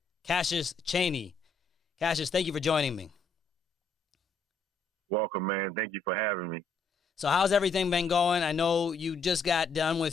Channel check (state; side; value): quieter; right; 3.9 dB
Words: Cassius Chaney. Cassius, thank you for joining me. Welcome, man. Thank you for having me. So how's everything been going? I know you just got done